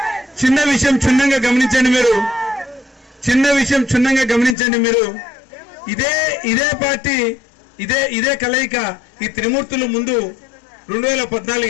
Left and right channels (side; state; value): right; drops out; at 4.5 s